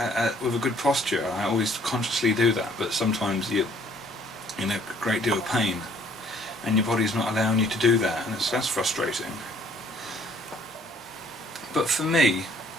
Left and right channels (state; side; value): normal; both; correlation 0.60